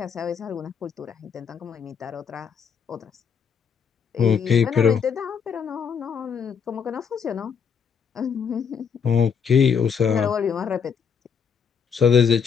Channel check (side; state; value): right; quieter; 6.7 dB